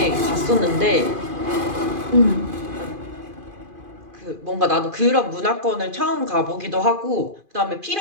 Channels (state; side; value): late; left; 2.5 ms